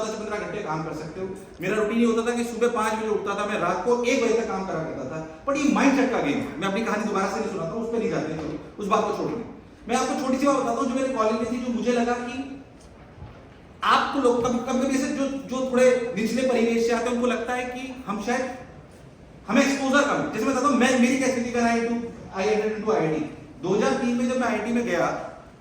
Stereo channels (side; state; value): both; identical; correlation 1.00